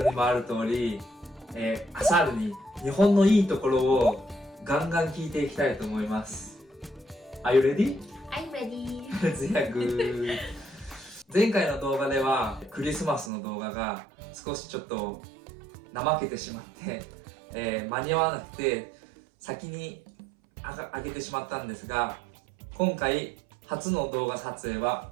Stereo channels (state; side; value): drops out; left; at 13.3 s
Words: にもある通り、アサールに日本のいいところをガンガン聞いていきたいと思います。Are you ready? I'm ready. ゼアグ前回の動画ではクリスマスの動画が少しちょっと怠けてしまって、間に合わなくて先に上げてしまったんですが、今回初の動画撮影は